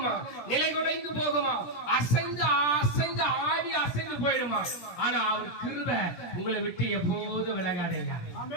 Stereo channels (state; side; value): late; right; 17 ms